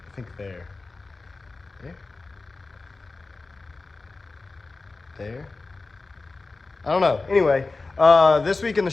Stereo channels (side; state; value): right; quieter; 3.7 dB